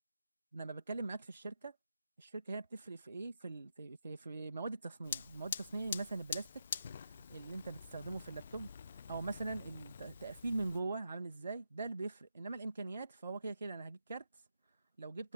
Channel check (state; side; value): inverted; both; correlation -0.85